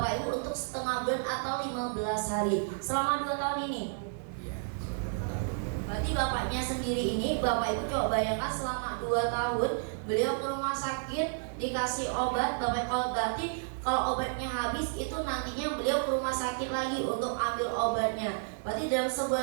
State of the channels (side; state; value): left; silent; 57 dB below the other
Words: Ibu untuk setengah bulan atau 15 hari selama 2 tahun ini. Iya, setengah tahun. Berarti bapaknya sendiri ini, Bapak Ibu coba bayangkan selama 2 tahun beliau ke rumah sakit dikasih obat. Bapak kalau berarti kalau obatnya habis itu nantinya beliau ke rumah sakit lagi untuk ambil obatnya. Berarti dalam